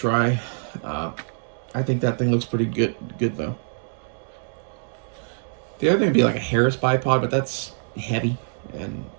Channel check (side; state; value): left; silent; digital silence